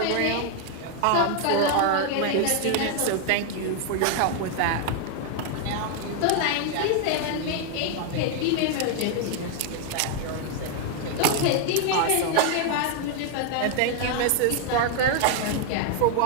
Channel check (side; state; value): both; different; correlation 0.01